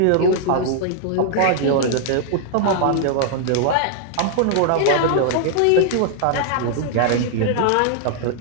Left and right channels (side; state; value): both; different; correlation -0.01